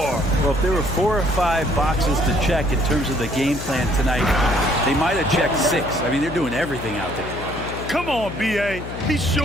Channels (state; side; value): noise; left; hum, 9 dB below the sound